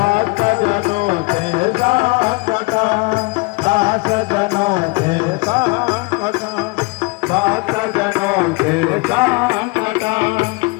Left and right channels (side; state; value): right; quieter; 27.6 dB